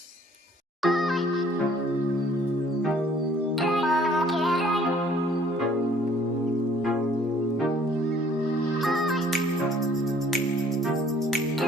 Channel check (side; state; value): both; normal; correlation 0.57